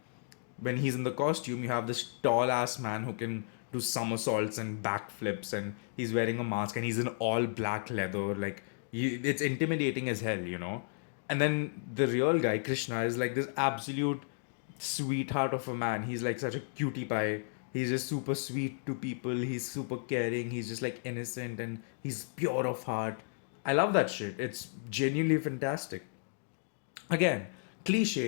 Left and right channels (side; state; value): right; silent; digital silence